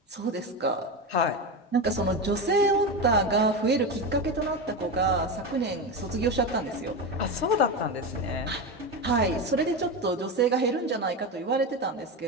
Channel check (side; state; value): both; normal; correlation 0.18